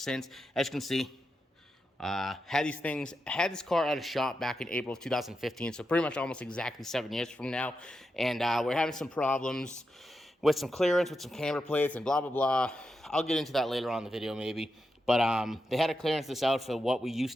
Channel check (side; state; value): both; normal; correlation 0.87